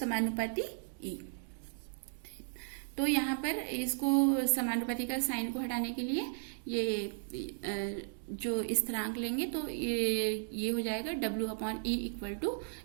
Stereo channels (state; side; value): silent; left; digital silence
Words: E। तो यहाँ पर इसको समानुपाती का साइन को हटाने के लिए ये जो स्थिरांक लेंगे तो ये हो जाएगा W/E इक्वल टू